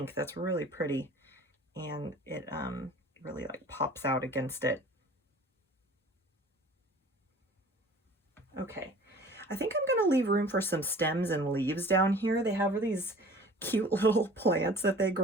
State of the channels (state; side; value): normal; both; correlation 0.46